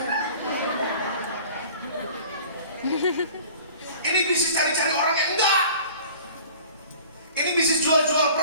Ini bisnis cari-cari orang yang enggak. Ini bisnis jual-jual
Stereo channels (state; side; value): inverted; both; correlation -0.46